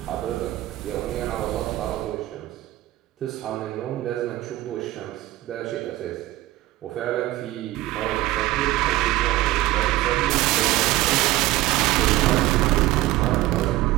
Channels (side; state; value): left; quieter; 16.7 dB